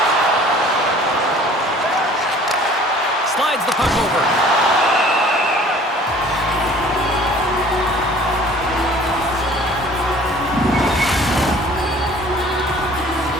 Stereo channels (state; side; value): normal; both; correlation 0.50